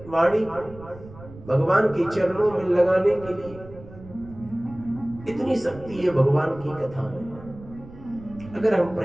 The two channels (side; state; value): right; noise; rumble, 18 dB below the sound